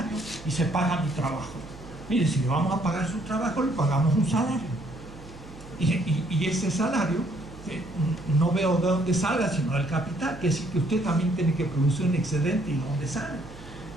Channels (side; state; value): right; noise; hum, 17 dB below the sound